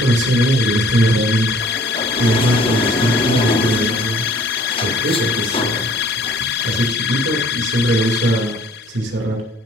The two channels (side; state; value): both; normal; correlation 0.55